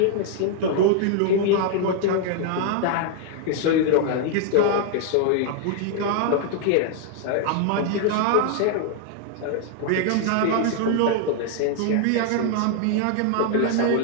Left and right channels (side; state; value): both; different; correlation 0.00